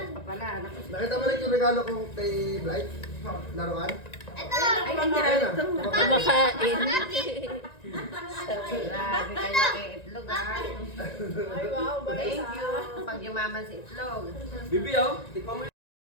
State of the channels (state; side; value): late; right; 1.9 ms